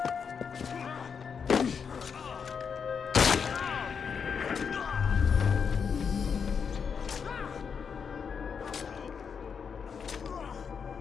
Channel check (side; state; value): right; quieter; 6.4 dB